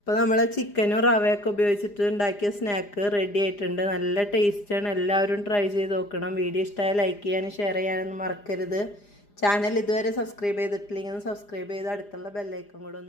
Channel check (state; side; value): late; right; 4.9 ms